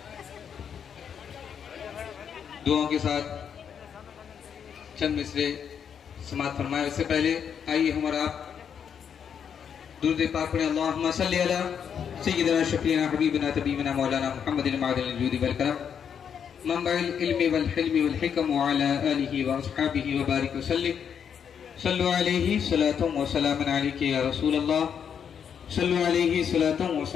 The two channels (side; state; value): right; quieter; 7.7 dB